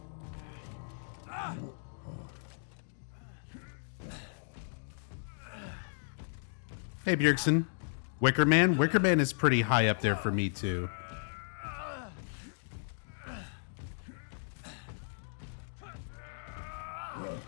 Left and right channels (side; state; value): right; silent; digital silence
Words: Hey, Bjergsen. Wicker Man? Wicker Man is pretty high up there for me, too.